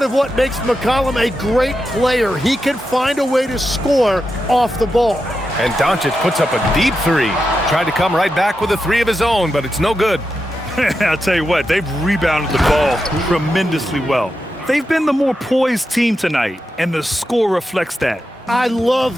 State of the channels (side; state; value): both; normal; correlation 0.88